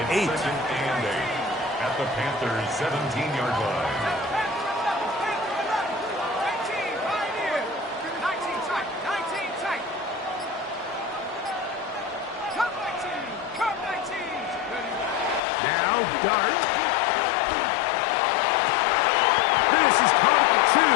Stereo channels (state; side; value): drops out; right; at 15.4 s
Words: 8. Second and 8 at the Panthers' 17-yard line. 19, right here. 19 tight. 19 tight. Come 19. Come 19. Now Dart. This is caught at